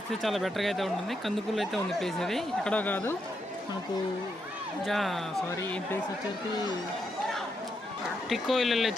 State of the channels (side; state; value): both; normal; correlation 0.81